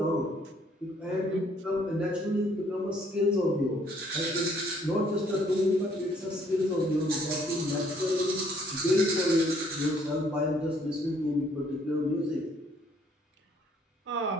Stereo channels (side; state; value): both; normal; correlation 0.64